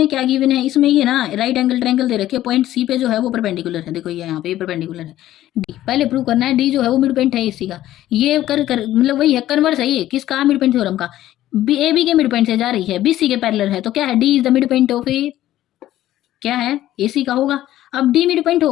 क्या गिवन है, इसमें ये ना राइट एंगल ट्रायंगल दे रखे, पॉइंट सी पे जो है वो परपेंडिकुलर है, देखो ये यहाँ पे परपेंडिकुलर है। डी पहले प्रूव करना है, डी जो है वो मिड पॉइंट है इसी का, ये कर मतलब वही है, कन्वर्स है ये किसका, मिड पॉइंट थ्योरम का। बी ए बी के मिड पॉइंट से जा रही है, बी सी के पैरेलल है, तो क्या है, D is the mid point of A, क्या है, ए सी का होगा। अब डी मिड पॉइंट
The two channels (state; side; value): quieter; right; 13.8 dB